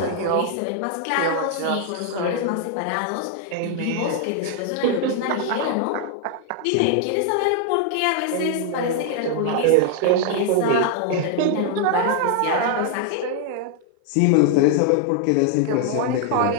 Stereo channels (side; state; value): both; different; correlation 0.00